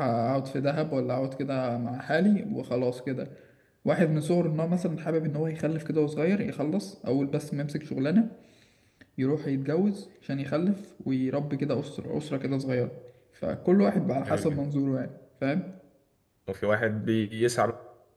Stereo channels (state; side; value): identical; both; correlation 1.00